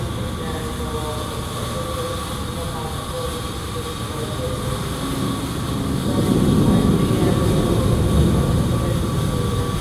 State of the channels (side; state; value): both; identical; correlation 1.00